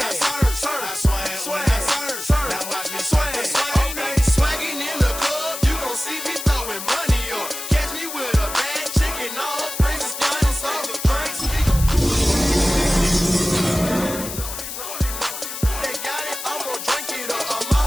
Now watch me swag. Okay. Swagging in the club, you gon' see me throwing money up. Catch me with a bad chick and all her friends is flying off the drinks. They got it, I'm gon' drink it up. I'm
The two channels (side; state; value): left; noise; hiss, 8 dB below the sound